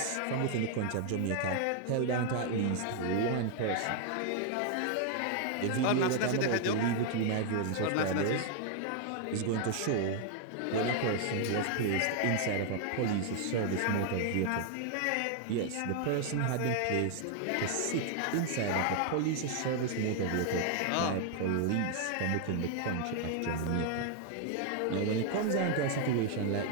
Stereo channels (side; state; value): both; different; correlation 0.00